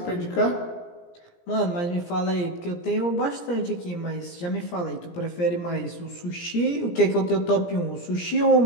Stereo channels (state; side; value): late; right; 17 ms